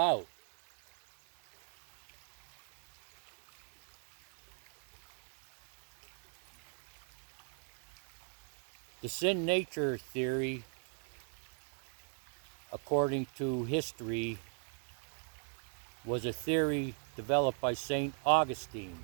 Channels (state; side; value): silent; left; 51 dB below the other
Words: The sin nature theory, according to history, was a theory developed by St. Augustine.